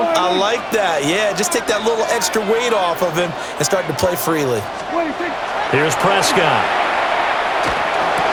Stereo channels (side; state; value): both; identical; correlation 1.00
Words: I like that. Yeah, just take that little extra weight off of him and start to play freely. Here's Prescott.